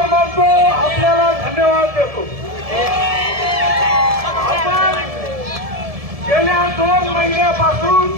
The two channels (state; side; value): late; left; 1.7 ms